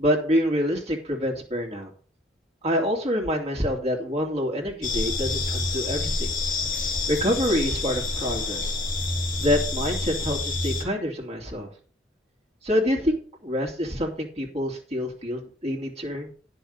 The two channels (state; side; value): normal; both; correlation 0.54